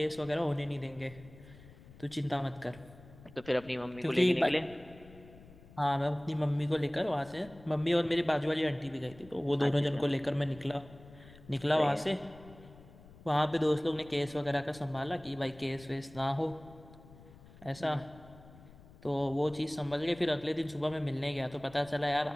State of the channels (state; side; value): noise; left; rumble, 21 dB below the sound